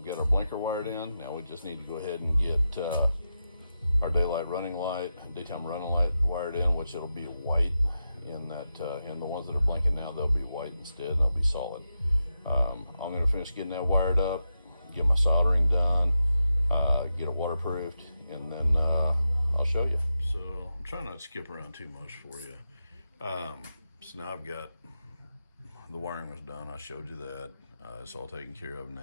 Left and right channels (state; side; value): inverted; both; correlation -0.88